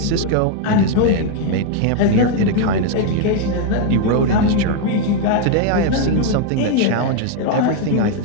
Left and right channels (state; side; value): different; both; correlation 0.01